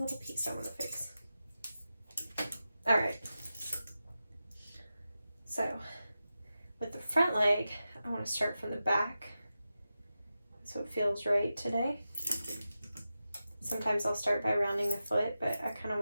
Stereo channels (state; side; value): inverted; both; correlation -0.92